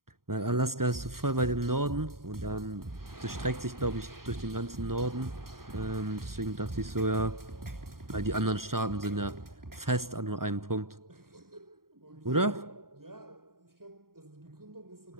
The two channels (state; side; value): late; left; 0.93 ms